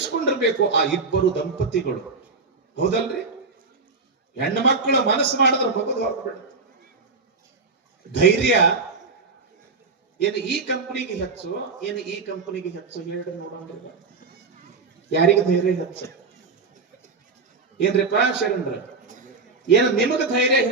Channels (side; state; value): left; quieter; 4.2 dB